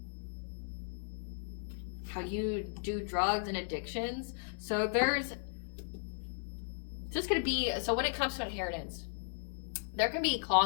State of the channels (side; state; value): right; silent; 54 dB below the other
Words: How you do drugs and addictions. So there's just going to be, so when it comes to inheritance, there can be